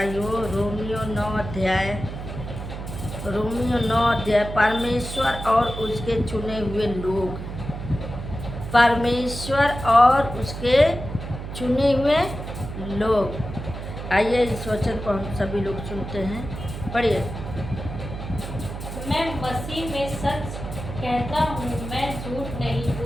हो रोमियो 9 अध्याय। रोमियो 9 अध्याय। परमेश्वर और उसके चुने हुए लोग। परमेश्वर और उसके चुने हुए लोग। आइए इस वचन को हम सभी लोग सुनते हैं। पढ़िए। मैं मसीह में सच कहता हूँ, मैं झूठ नहीं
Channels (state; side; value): noise; right; hum, 8 dB below the sound